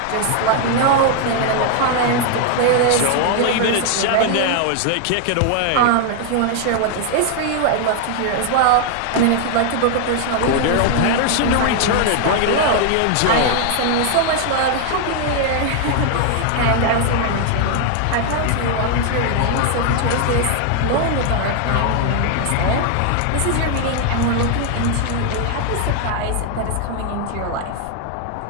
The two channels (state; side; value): different; both; correlation 0.00